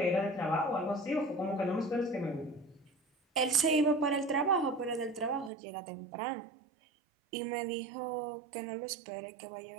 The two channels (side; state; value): left; drops out; at 5.5 s